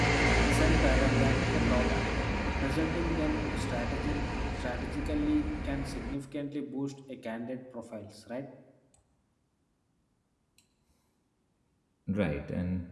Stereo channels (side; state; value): both; identical; correlation 1.00